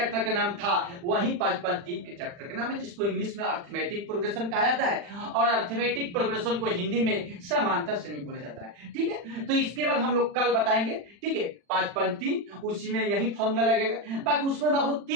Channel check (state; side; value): late; left; 40 ms